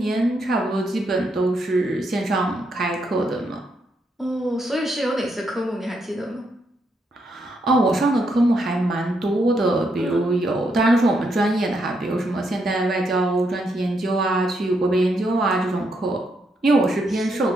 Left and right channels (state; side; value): normal; both; correlation 0.78